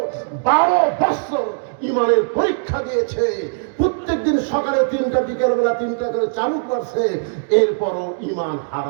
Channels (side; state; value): left; silent; digital silence